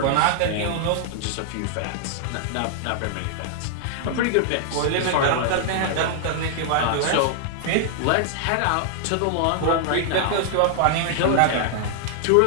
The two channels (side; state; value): both; different; correlation 0.00